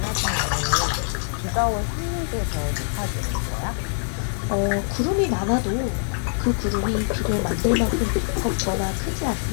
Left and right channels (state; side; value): silent; right; digital silence